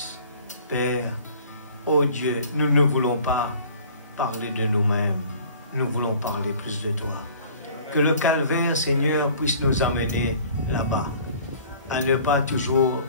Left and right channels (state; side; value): inverted; both; correlation -0.50